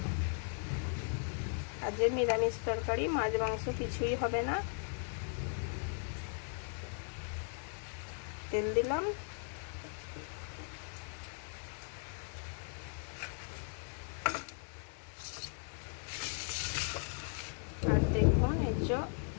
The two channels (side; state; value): right; silent; 53 dB below the other